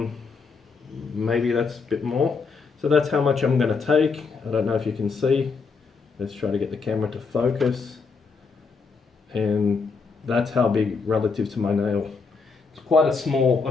Maybe that's a bit more. So that's how much I'm going to take. I don't know if you can see. Let's try to get the camera to focus. And that's how big relative to my nail. It's quite a small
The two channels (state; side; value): quieter; right; 4.9 dB